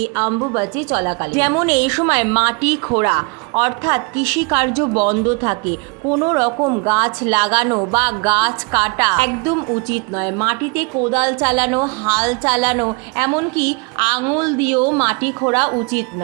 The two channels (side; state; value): left; quieter; 30.8 dB